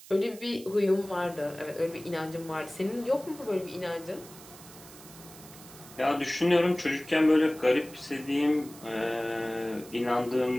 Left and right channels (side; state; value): right; noise; hiss, 19 dB below the sound